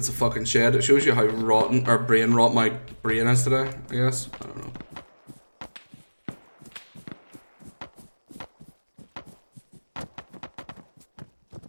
a fucking shed. It shows you how rotten or brain rot my brain is today, I guess. I don't know.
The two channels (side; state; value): both; inverted; correlation -1.00